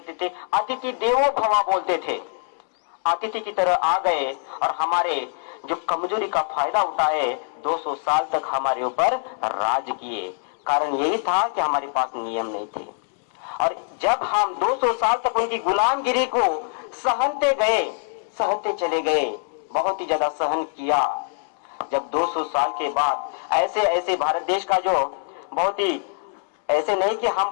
थे, अतिथि देवो भव बोलते थे। अतिथि की तरह आ गए और हमारे जो कमजोरी का फायदा उठाए, 200 साल तक हमारे ऊपर राज किए। कारण यही था कि हमारे पास नियम नहीं थे। और जब हम 200 साल तक उनकी गुलामगिरी को सहते गए, सहते चले गए, बहुत ही ज्यादा सहन किया। जब 200 साल के बाद ऐसे ऐसे भारत देश का जो बहुत ही, ऐसे नहीं कि हम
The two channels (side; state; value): right; silent; 63 dB below the other